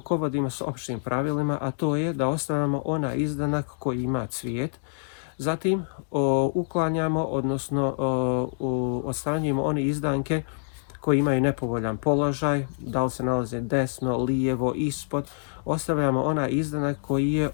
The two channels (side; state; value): right; silent; digital silence